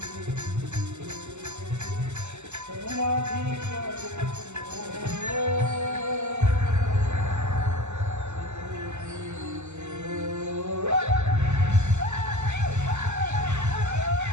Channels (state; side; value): late; left; 0.83 ms